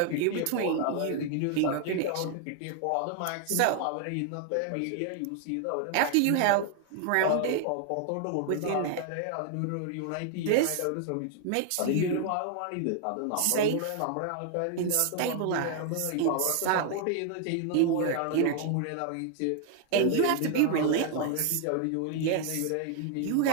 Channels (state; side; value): different; both; correlation 0.00